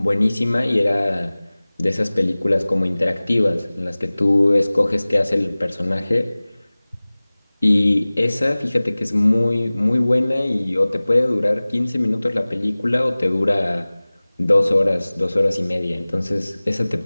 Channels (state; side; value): inverted; both; correlation -0.99